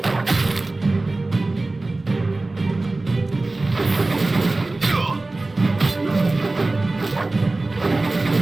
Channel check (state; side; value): quieter; left; 3.1 dB